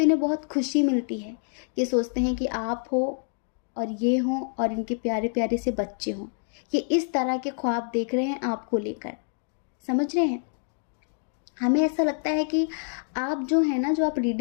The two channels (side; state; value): right; silent; digital silence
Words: इन्हें बहुत खुशी मिलती है। ये सोचते हैं कि आप हो और ये हों और इनके प्यारे प्यारे से बच्चे हों। ये इस तरह के ख्वाब देख रहे हैं आपको लेकर, समझ रहे हैं। हमें ऐसा लगता है कि आप जो है ना, जो आप